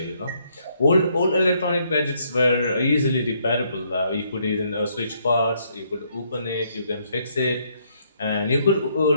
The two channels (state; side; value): inverted; both; correlation -0.71